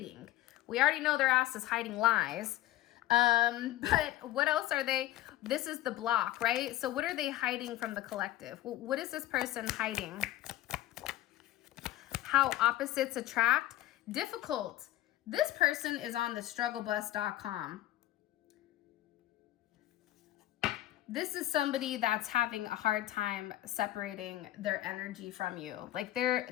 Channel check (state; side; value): quieter; right; 15.0 dB